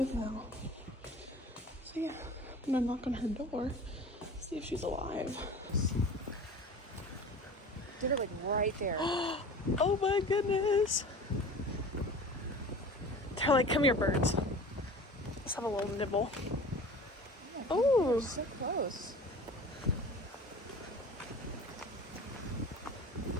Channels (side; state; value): both; normal; correlation 0.40